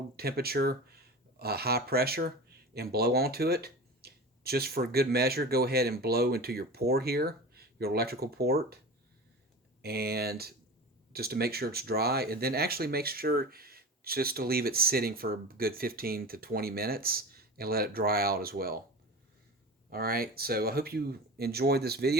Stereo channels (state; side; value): normal; both; correlation 0.32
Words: temperature, high pressure, and blow onto it. Just for good measure, go ahead and blow into your port here, your electrical port, and just to make sure it's dry, and then actually make sure just to leave it sitting for a good 15 to 20 minutes and let it dry out as well. Alright, so I hope you enjoyed this